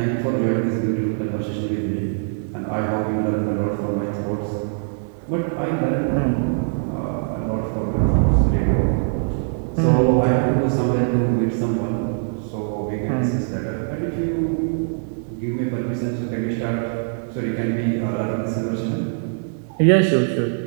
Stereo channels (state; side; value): silent; left; digital silence